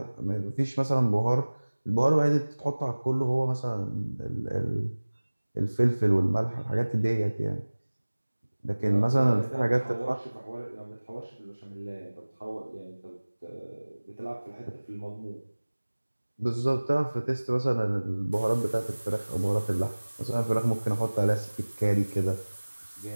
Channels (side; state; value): both; inverted; correlation -1.00